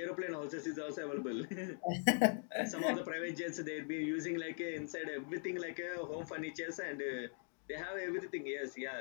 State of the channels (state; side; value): silent; right; 50 dB below the other